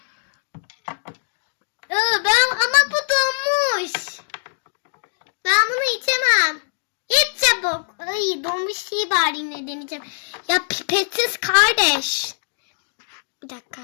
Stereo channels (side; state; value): right; silent; digital silence